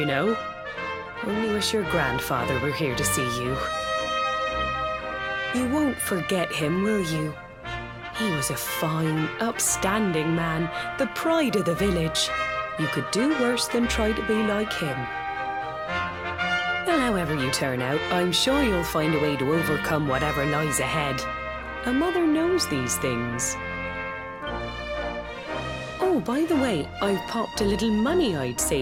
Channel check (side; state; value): both; identical; correlation 1.00